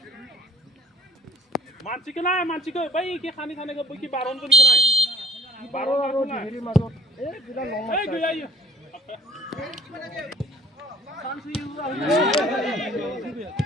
মানসিকে না মানসিকে ভাই কি খানি খানে গো কি বারণ করি না বারো रो হেরে মাজত এ বিলা লং এই গই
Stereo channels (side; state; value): both; normal; correlation 0.53